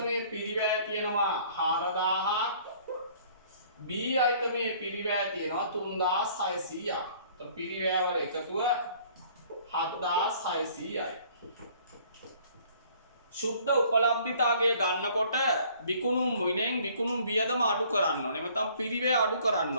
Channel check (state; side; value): inverted; both; correlation -0.56